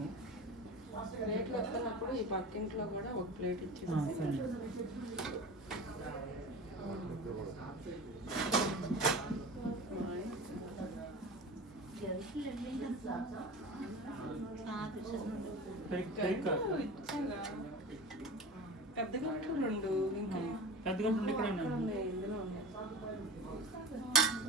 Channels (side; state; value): both; normal; correlation 0.30